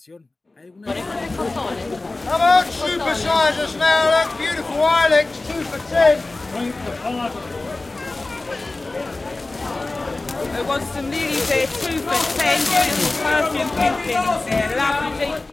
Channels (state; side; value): quieter; right; 3.2 dB